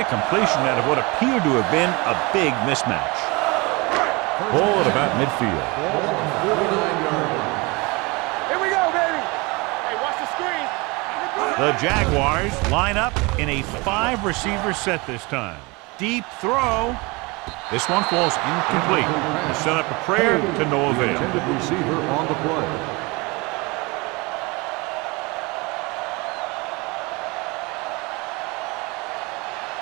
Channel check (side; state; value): left; quieter; 26.0 dB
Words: completion out of what appeared to have been a big mismatch. Ball at about midfield. Ball on the 49-yard line. Here we go, baby. Hey, watch the screen. The Jaguars line up in a 5-receiver set this time. Deep throw. This one falls incomplete. They set up a prayer to no avail. Intended receiver on the play.